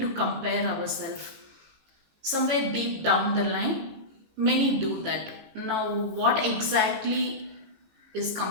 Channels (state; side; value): late; left; 18 ms